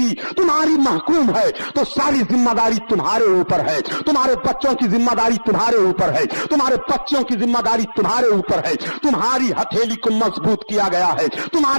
तुम्हारी महकूम है तो सारी जिम्मेदारी तुम्हारे ऊपर है। तुम्हारे बच्चों की जिम्मेदारी तुम्हारे ऊपर है, तुम्हारे बच्चों की जिम्मेदारी तुम्हारे ऊपर है। तुम्हारी हथेली को मजबूत किया गया है,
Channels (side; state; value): both; inverted; correlation -1.00